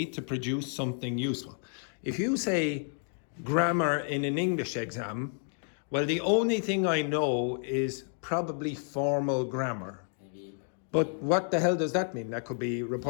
to produce something useful. If you say grammar in an English exam, well, the only thing I know is probably formal grammar. But what the hell does that mean? That could be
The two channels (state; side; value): silent; right; 57 dB below the other